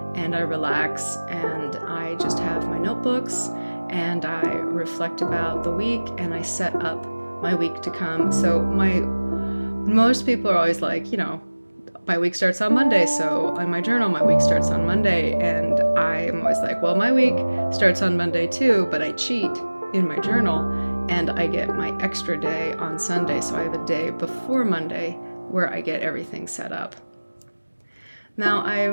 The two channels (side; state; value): both; inverted; correlation -1.00